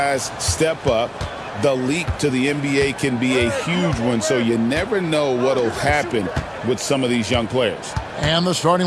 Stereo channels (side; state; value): both; identical; correlation 1.00